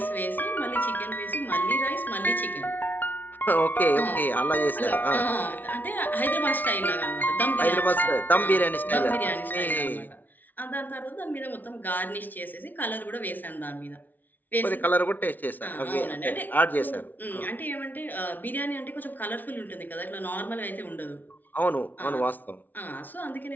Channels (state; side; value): late; right; 0.083 ms